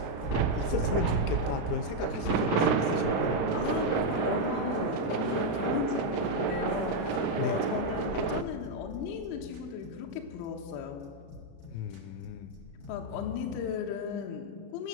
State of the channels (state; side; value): late; right; 36 ms